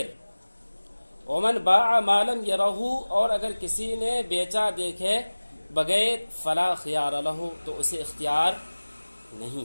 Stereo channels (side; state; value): both; inverted; correlation -1.00